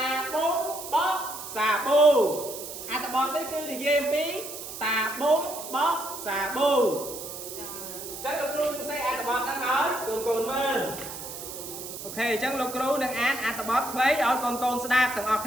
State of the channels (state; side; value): noise; right; hiss, 10 dB below the sound